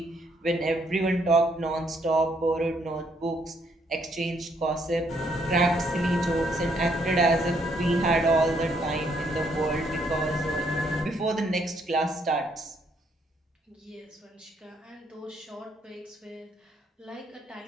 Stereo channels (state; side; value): normal; both; correlation 0.71